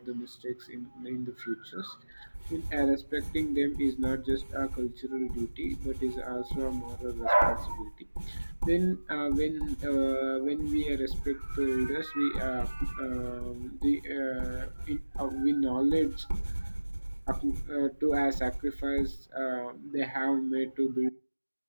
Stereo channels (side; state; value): both; inverted; correlation -1.00